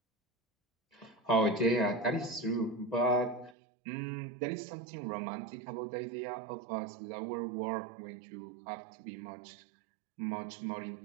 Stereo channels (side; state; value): left; drops out; at 3.6 s